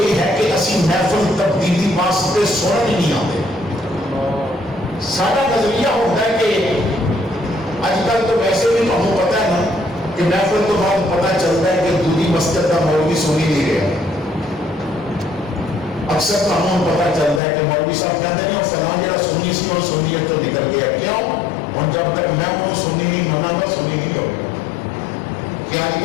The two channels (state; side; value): drops out; right; at 17.4 s